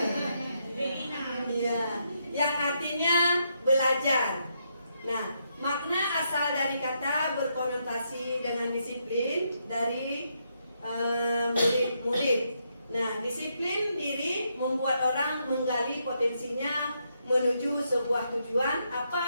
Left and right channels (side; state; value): both; inverted; correlation -0.78